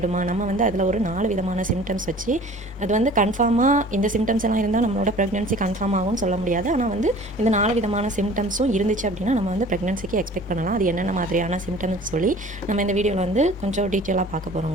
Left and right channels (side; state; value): both; normal; correlation 0.46